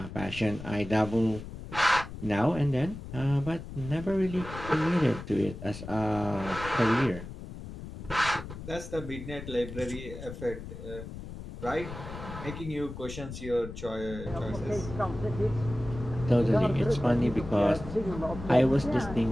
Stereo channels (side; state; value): left; noise; rumble, 11 dB below the sound